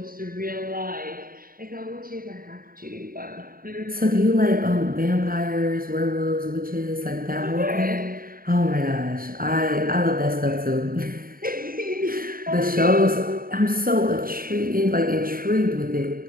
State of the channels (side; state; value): left; late; 0.42 ms